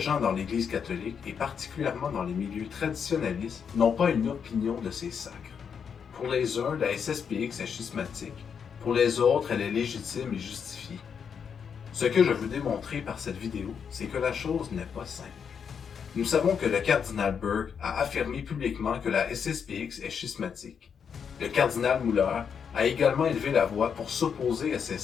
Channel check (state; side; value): quieter; right; 7.0 dB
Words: dans l'Église catholique, et particulièrement dans les milieux traditionnalistes, n'ont pas une opinion de ces sacres. Pour les uns, la SSPX est schismatique, pour les autres, elle est légitime et justifiée. Ce que je veux démontrer par cette vidéo, c'est que la chose n'est pas simple. Nous savons que le cardinal Burke a affirmé publiquement que la SSPX est schismatique. Le cardinal Muller a également élevé la voix pour s'opposer à ces